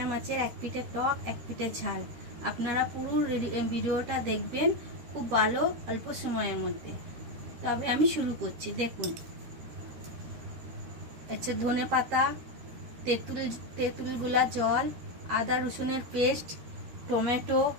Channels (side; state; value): left; late; 13 ms